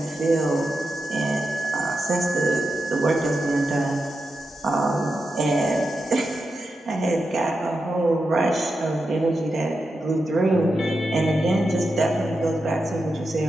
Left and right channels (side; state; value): both; normal; correlation 0.88